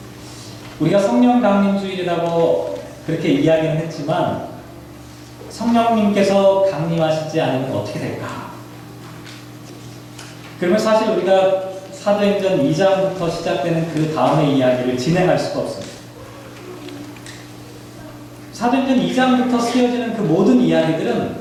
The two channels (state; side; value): identical; both; correlation 1.00